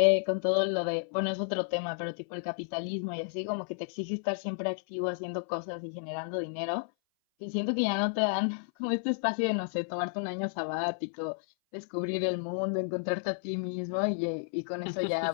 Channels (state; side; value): silent; right; 56 dB below the other